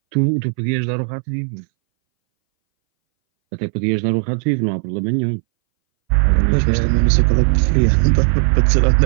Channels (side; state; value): left; silent; 64 dB below the other